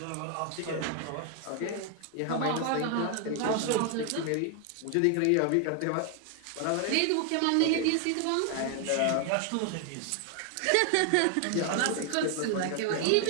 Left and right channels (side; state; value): both; different; correlation 0.00